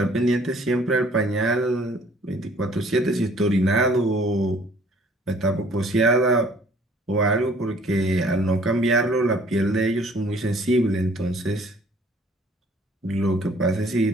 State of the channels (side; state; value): both; normal; correlation 0.57